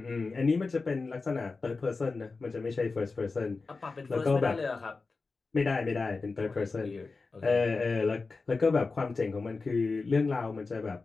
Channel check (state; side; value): quieter; right; 4.0 dB